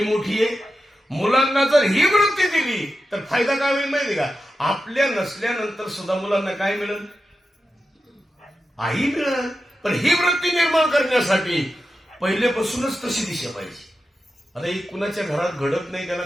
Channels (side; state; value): both; normal; correlation 0.90